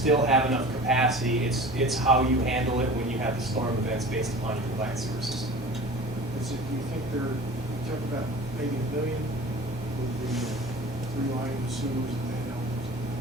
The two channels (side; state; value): both; normal; correlation 0.39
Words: have enough capacity. It's how you handle it when you have the storm events based upon your combined sewer system. Do you think you talk about maybe 1 million with the 3 line sewers and then,